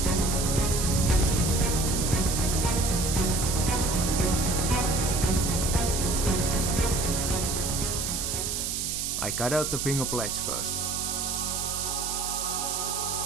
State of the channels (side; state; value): right; noise; hiss, 1 dB below the sound